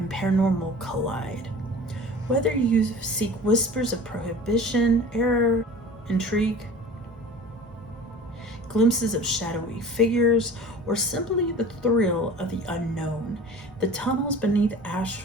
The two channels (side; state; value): both; normal; correlation 0.41